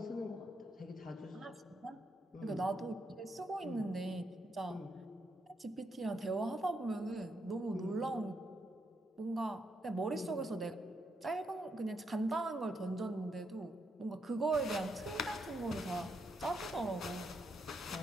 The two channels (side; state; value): both; normal; correlation 0.79